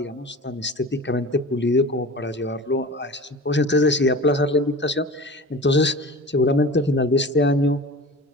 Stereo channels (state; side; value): normal; both; correlation 0.36